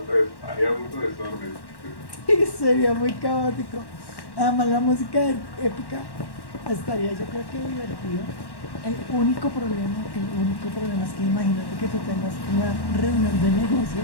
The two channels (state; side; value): late; right; 1.1 ms